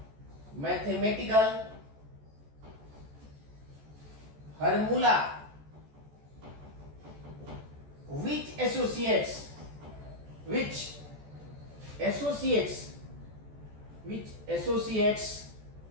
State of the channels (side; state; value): left; late; 14 ms